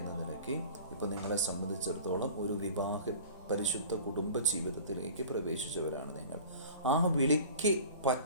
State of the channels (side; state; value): both; inverted; correlation -0.42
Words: നിലയ്ക്ക്. ഇപ്പോൾ നിങ്ങളെ സംബന്ധിച്ചിടത്തോളം ഒരു പരിശുദ്ധ കുടുംബ ജീവിതത്തിലേക്ക് പ്രവേശിച്ചവരാണ് നിങ്ങൾ. ആ വിളിക്ക്